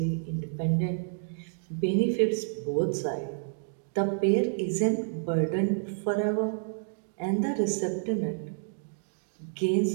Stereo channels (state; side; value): silent; left; digital silence